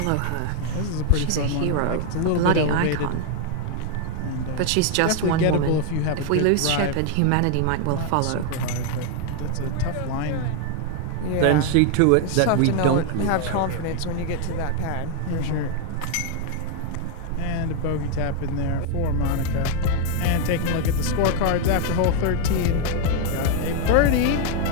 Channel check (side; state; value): both; different; correlation 0.00